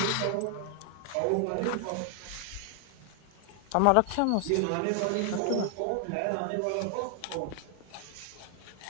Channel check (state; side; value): different; both; correlation 0.00